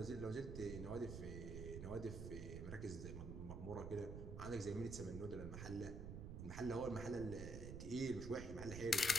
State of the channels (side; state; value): right; noise; rumble, 6 dB below the sound